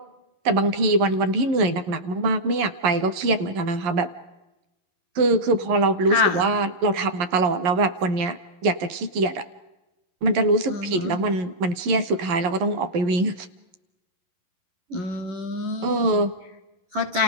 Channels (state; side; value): late; left; 11 ms